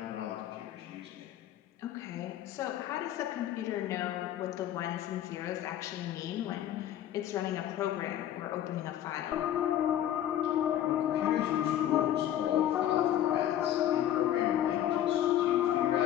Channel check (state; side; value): quieter; right; 11.6 dB